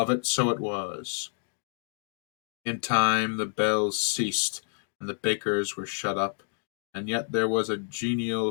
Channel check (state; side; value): silent; right; digital silence